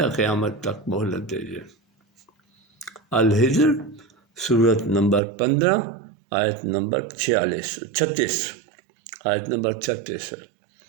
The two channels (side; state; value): left; drops out; at 5.2 s